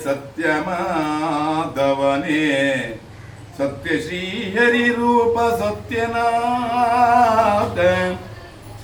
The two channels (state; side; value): identical; both; correlation 1.00